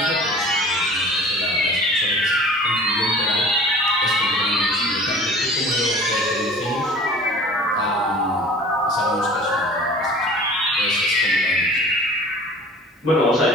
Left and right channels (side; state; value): both; normal; correlation 0.44